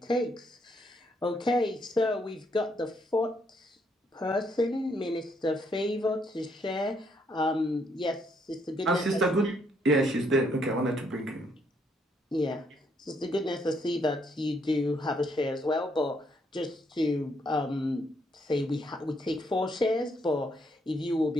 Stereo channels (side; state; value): both; normal; correlation 0.72